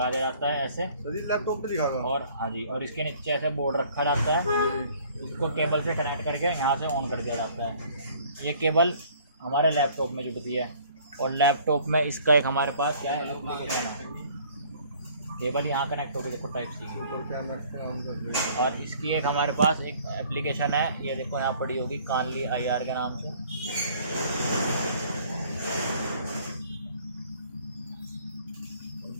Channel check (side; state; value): both; inverted; correlation -0.56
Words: दिया जाता है ऐसे। सर ये लैपटॉप पे दिखागा। और हाँ जी, और इसके नीचे ऐसे बोर्ड रखा जाता है, इसको केबल से कनेक्ट करके यहाँ से ऑन कर दिया जाता है। ये केबल हमारे लैपटॉप में जुड़ती है, और लैपटॉप में इसका एक हमारे पास क्या है, एप्लीकेशन है, केबल यहाँ कनेक्ट होगी, देखो टाइप सी की। और इसकी एक हमारे पास एक एप्लीकेशन है, ये देखो यहाँ पड़ी होगी, कानली IR के नाम से।